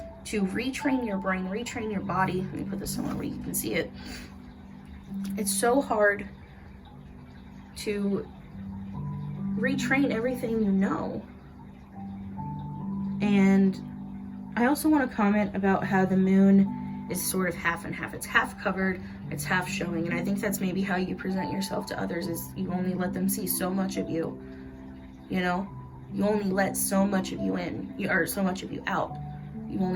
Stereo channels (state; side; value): identical; both; correlation 1.00